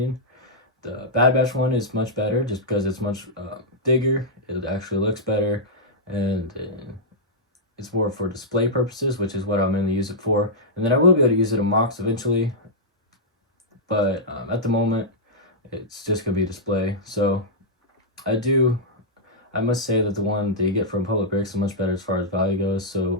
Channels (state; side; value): normal; both; correlation -0.09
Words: the Bad Batch one is much better just because it's much bigger. It actually looks better, and it's more for display purposes, which is what I'll mainly use it for. And then I will be able to use it in mocks eventually, but at the moment, it's just going to be display. So I must say that the one that you get from Republic Bricks is much better as far as value goes, so